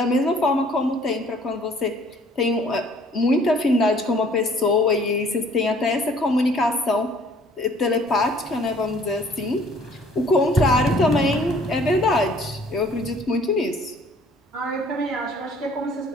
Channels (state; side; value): normal; both; correlation 0.57